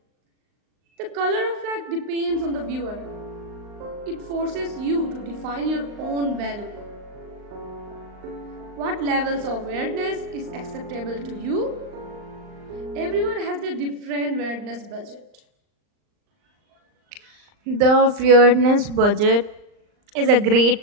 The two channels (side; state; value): left; late; 39 ms